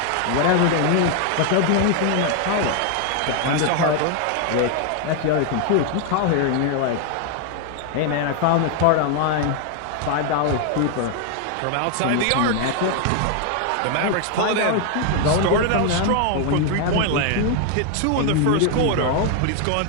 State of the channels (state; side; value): different; both; correlation 0.01